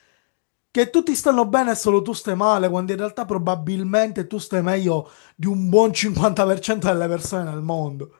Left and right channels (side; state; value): right; silent; digital silence